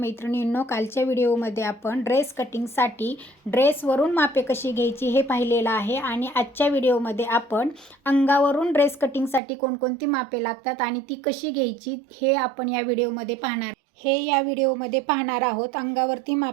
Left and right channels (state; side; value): drops out; left; at 9.4 s